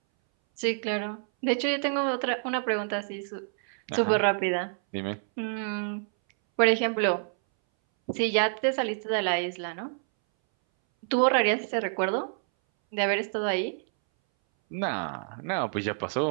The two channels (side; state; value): left; silent; 60 dB below the other